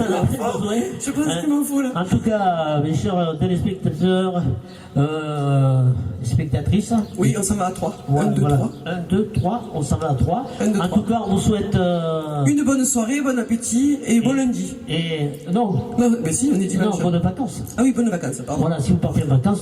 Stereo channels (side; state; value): both; identical; correlation 1.00